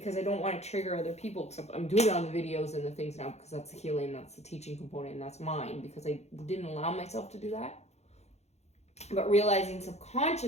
I don't want to trigger other people, except I'm doing it on the videos and the things now because that's the healing, that's the teaching component, and that's mine because I didn't allow myself to do that. But realizing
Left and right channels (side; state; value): right; late; 0.32 ms